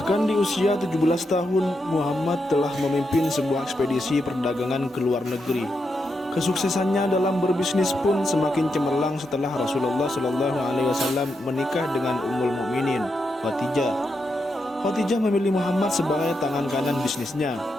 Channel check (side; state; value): both; normal; correlation 0.84